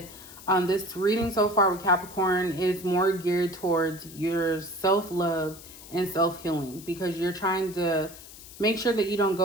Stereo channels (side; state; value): left; noise; hiss, 17 dB below the sound